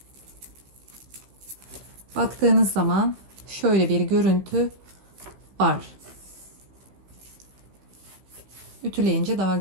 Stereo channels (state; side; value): late; left; 15 ms